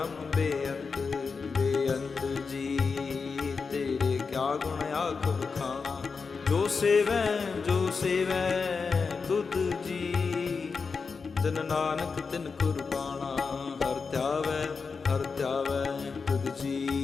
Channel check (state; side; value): quieter; right; 5.0 dB